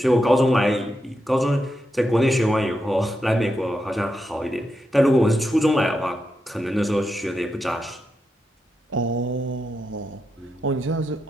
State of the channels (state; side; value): normal; both; correlation 0.85